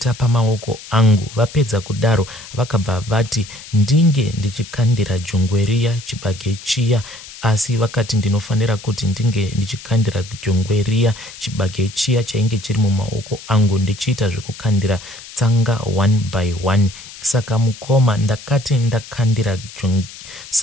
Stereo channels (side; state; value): left; noise; hiss, 16 dB below the sound